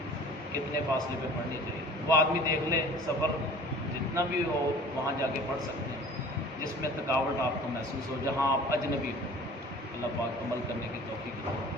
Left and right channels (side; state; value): both; normal; correlation 0.45